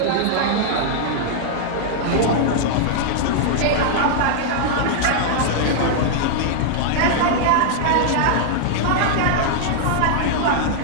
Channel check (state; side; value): different; both; correlation -0.01